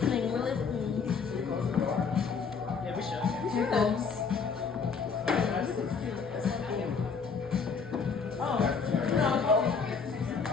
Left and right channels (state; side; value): quieter; right; 5.5 dB